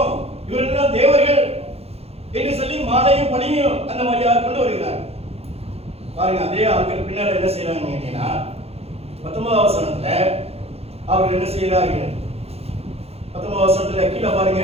இவர்கள் தேவர்கள் என்று சொல்லி மாடையும் பணியும் அந்த மாதிரியாக கொண்டு வருகிறார். பாருங்க, அதே ஆட்கள் பின்னால் என்ன செய்யறாங்க கேட்டீங்கன்னா 19வது வசனத்துல அவர்கள் என்ன செய்கிறார்கள்? 19வது வசனத்துல கீழே பாருங்க,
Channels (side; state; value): left; late; 0.29 ms